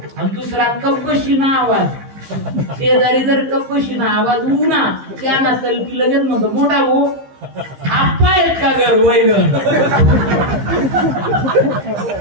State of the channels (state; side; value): late; left; 15 ms